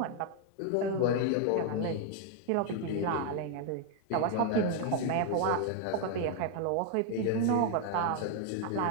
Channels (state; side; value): different; both; correlation 0.00